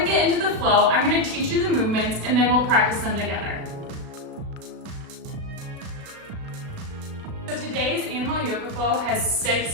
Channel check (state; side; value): late; left; 37 ms